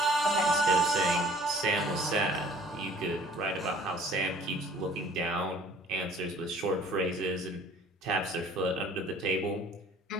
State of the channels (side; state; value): both; normal; correlation 0.52